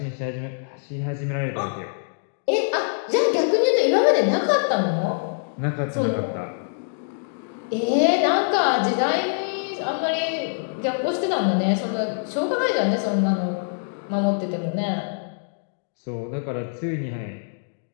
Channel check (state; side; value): silent; right; digital silence